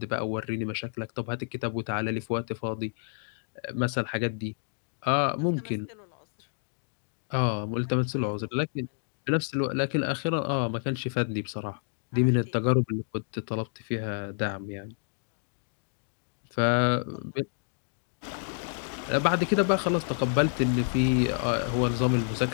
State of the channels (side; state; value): right; silent; digital silence